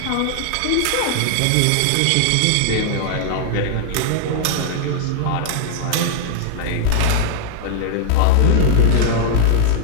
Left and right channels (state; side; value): different; both; correlation -0.01